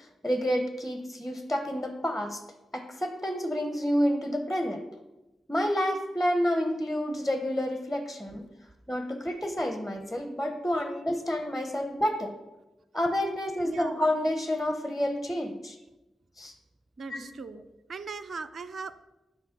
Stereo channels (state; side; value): normal; both; correlation 0.92